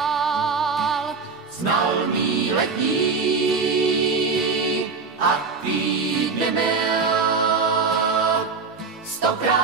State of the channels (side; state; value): left; quieter; 4.8 dB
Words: Znal mý letní a týdny mil,